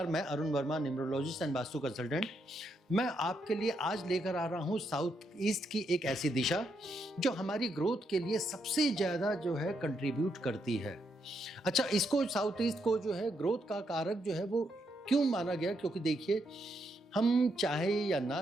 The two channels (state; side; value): normal; both; correlation 0.79